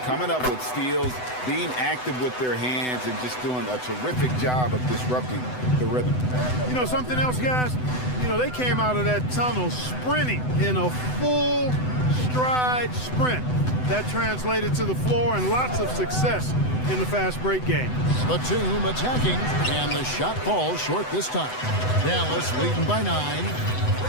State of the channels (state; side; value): late; right; 7.9 ms